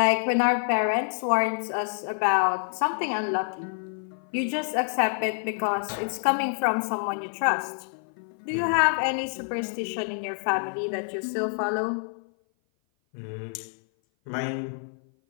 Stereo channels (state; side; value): silent; right; 56 dB below the other